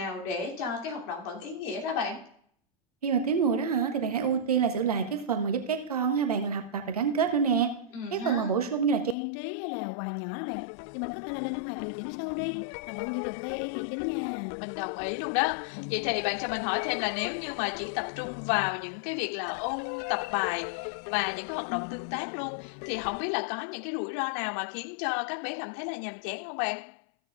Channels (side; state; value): right; drops out; at 9.2 s